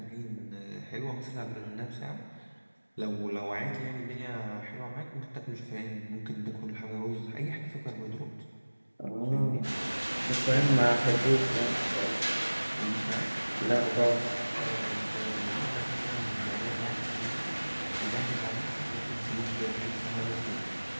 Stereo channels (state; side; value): inverted; both; correlation -1.00